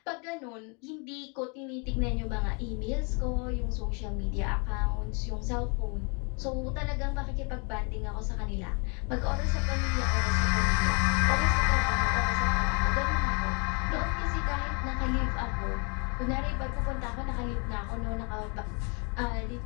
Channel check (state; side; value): quieter; right; 34.8 dB